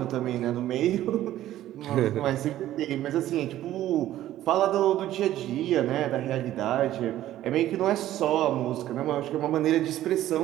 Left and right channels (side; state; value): left; quieter; 13.4 dB